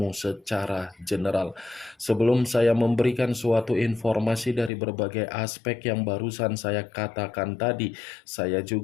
secara general. Sebelum saya memberikan suatu informasi dari berbagai aspek yang barusan saya katakan tadi, saya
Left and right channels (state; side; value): drops out; right; at 4.7 s